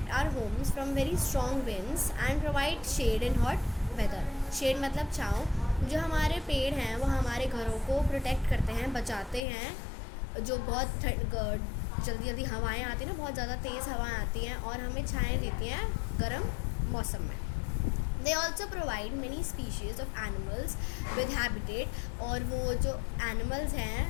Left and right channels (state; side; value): drops out; right; at 9.4 s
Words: our homes from very strong winds and provide shade in hot weather. Shade मतलब छाँव। जो हमारे पेड़ हैं वो हमारे घरों को प्रोटेक्ट करते हैं, बचाते हैं। जो बहुत जल्दी जल्दी हवाएं आती हैं ना, बहुत ज़्यादा तेज़ हवाएं आती हैं और हमें छाएँ देती हैं गर्म मौसम में। They also provide many species of animals with habitat. और वो जो एनिमल्स हैं,